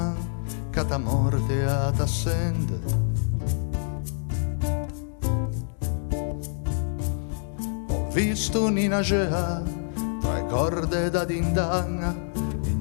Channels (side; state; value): right; silent; digital silence